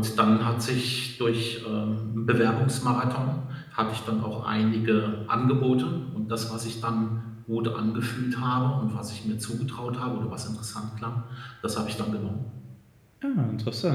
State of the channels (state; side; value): identical; both; correlation 1.00